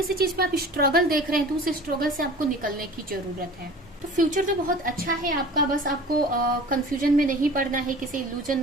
चीज में आप स्ट्रगल देख रहे हैं तो उस स्ट्रगल से आपको निकलने की जरूरत है। तो फ्यूचर तो बहुत अच्छा है आपका, बस आपको कंफ्यूजन में नहीं पड़ना है, किसी इल्यूजन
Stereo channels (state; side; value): normal; both; correlation 0.42